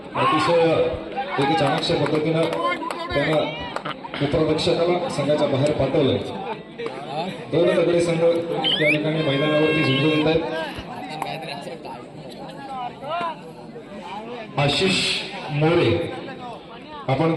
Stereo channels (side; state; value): both; identical; correlation 1.00